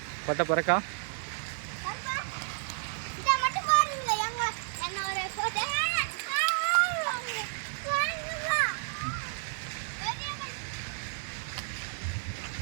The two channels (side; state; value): left; silent; digital silence